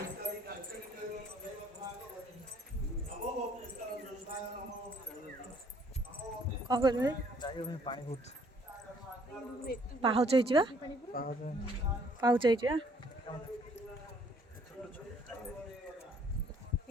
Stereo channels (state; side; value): normal; both; correlation 0.62